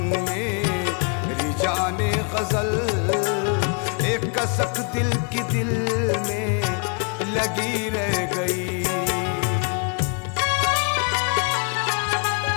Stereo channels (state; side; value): quieter; right; 36.4 dB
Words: मेरी जाने गज़ल। एक कसक दिल की दिल में लगी रह गई।